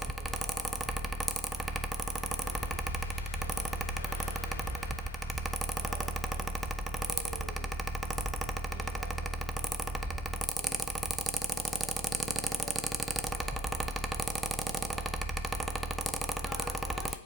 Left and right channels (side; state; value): both; normal; correlation 0.72